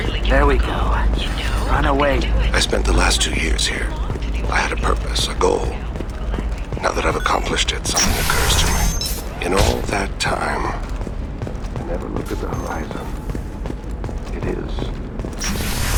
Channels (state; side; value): identical; both; correlation 1.00